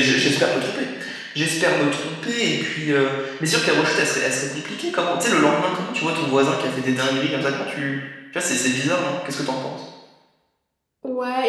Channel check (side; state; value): both; identical; correlation 1.00